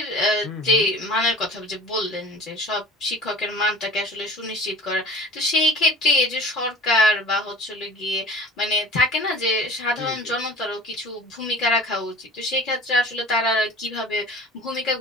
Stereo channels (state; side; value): normal; both; correlation 0.42